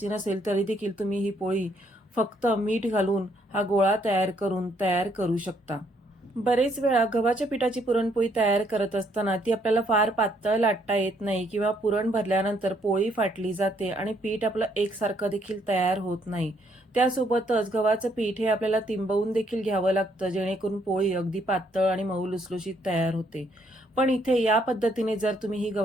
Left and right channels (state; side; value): normal; both; correlation 0.70